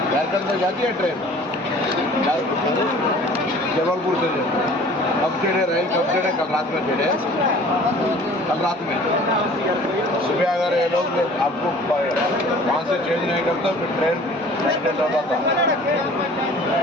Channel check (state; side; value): normal; both; correlation 0.48